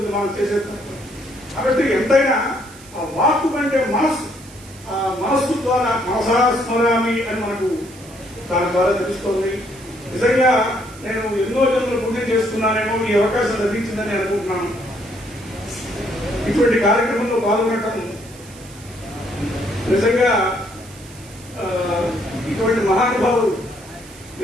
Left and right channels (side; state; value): right; noise; hiss, 21 dB below the sound